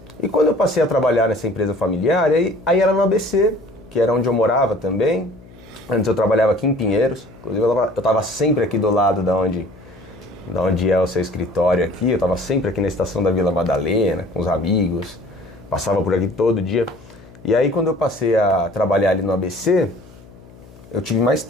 E quando eu passei a trabalhar nessa empresa familiar, aí era no ABC, que era onde eu morava também. Antes eu trabalhava aqui em Pinheiros, inclusive eu estava sempre aqui do lado da onde é o seu escritório aqui, eu estava sempre aqui na estação da Vila Madalena, com os amigos, passava por aqui todo dia. E aí quando eu passei a trabalhar ali no ABC, eu tive mais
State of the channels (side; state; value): left; noise; hum, 23 dB below the sound